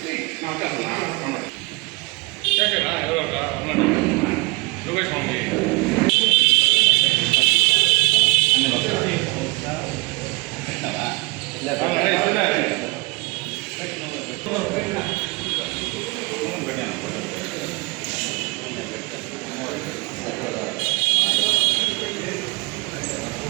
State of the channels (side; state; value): left; quieter; 26.1 dB